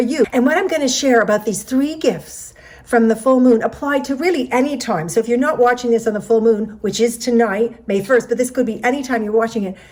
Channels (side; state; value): both; identical; correlation 1.00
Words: And what I'm going to share about these 3 gifts from the full moon apply to really any time. So if you're not watching this on the full moon, which is tonight, May 1st, but this could be any time you're watching it,